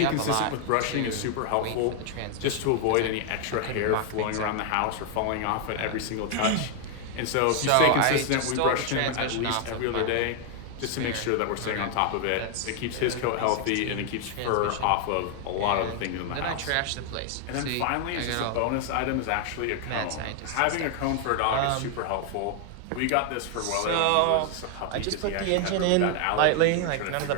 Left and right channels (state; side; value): different; both; correlation 0.00